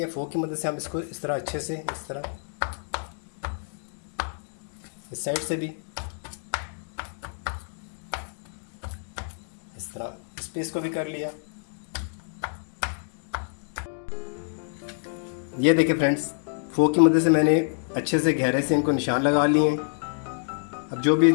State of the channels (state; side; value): silent; right; digital silence